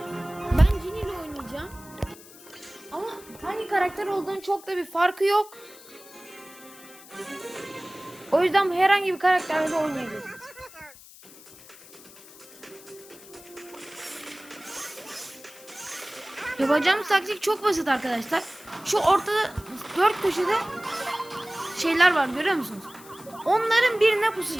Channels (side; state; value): left; noise; hiss, 20 dB below the sound